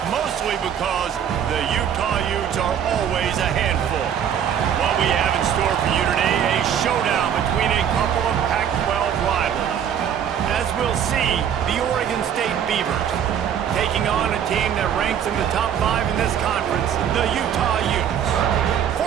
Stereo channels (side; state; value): left; quieter; 8.9 dB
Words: Mostly because the Utah Utes are always a handful. What we have in store for you today, a showdown between a couple of Pac-12 rivals. As we'll see, the Oregon State Beavers taking on a team that ranks in the top 5 in this conference, the Utah Utes.